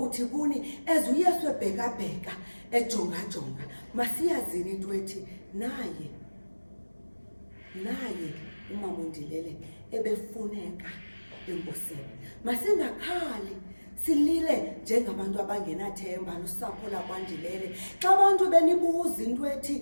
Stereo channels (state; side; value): inverted; both; correlation -1.00